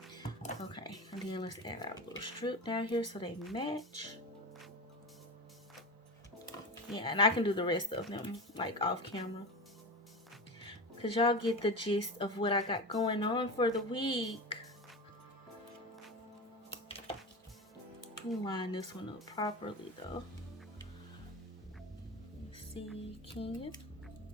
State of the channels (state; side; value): normal; both; correlation 0.24